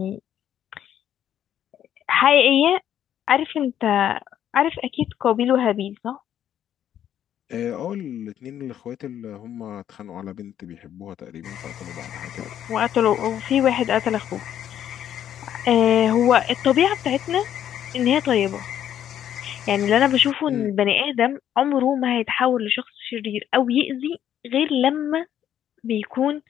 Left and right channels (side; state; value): right; quieter; 10.4 dB